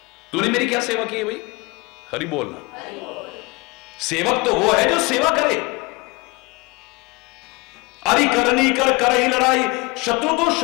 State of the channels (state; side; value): quieter; right; 26.0 dB